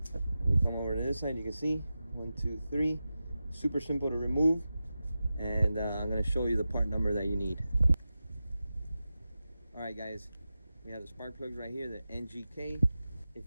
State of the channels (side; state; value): both; inverted; correlation -0.92